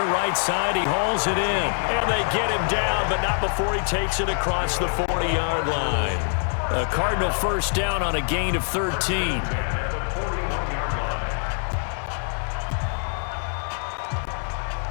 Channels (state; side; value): silent; right; 58 dB below the other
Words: right side. He hauls it in. And they get him down, but not before he takes it across the 40-yard line. A Cardinal 1st down on a gain of 13.